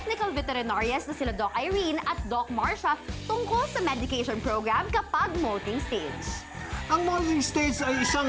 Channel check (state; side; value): identical; both; correlation 1.00